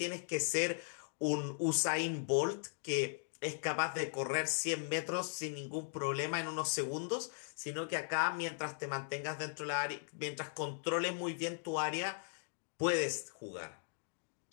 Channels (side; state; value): right; silent; digital silence